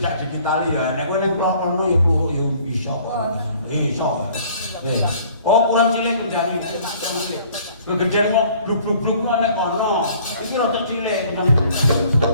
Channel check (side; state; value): both; inverted; correlation -0.55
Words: digitali ya. Nek kowe ning klono ya pluhuk ya iso. Iso. Oh, kurang cilik kendari. Gegeden mau bluk-bluk nek ono. Iki rada cilik. Nah,